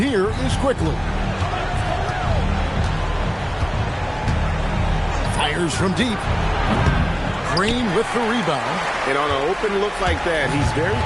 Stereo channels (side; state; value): both; identical; correlation 1.00